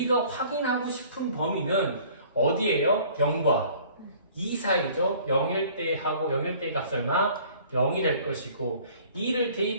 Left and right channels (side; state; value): both; inverted; correlation -0.52